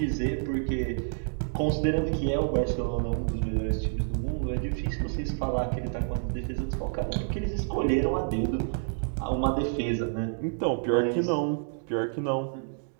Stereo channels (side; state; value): left; silent; digital silence